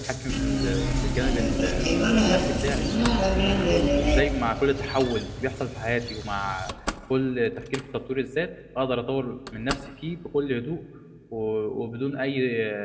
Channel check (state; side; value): identical; both; correlation 1.00